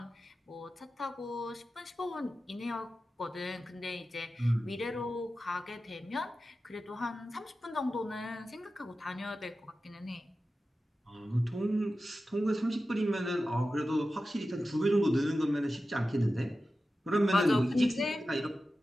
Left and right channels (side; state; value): both; normal; correlation 0.93